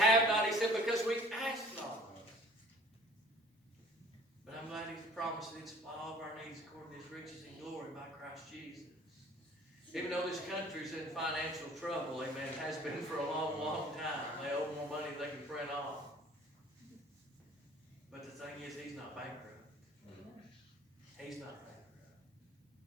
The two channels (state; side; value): normal; both; correlation 0.51